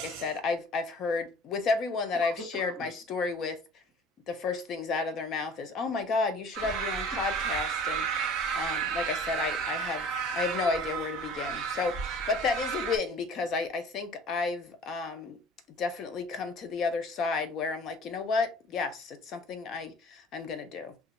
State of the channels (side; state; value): both; normal; correlation 0.47